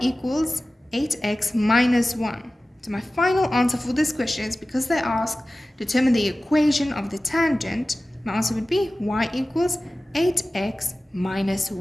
8x minus 1. So my final answer for this question is, because they ask determine the equation of the tangent, my answer would be y equals 8x minus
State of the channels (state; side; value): normal; both; correlation 0.96